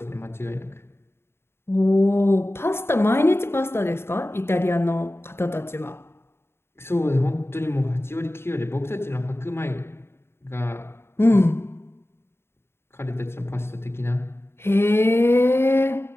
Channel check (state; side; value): late; right; 0.12 ms